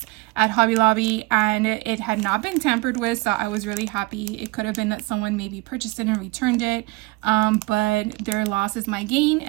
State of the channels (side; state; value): left; quieter; 22.9 dB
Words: at Hobby Lobby, and it had not been tampered with, so I was really happy. It could have been that someone maybe purchased it and returned it, but their loss is my gain,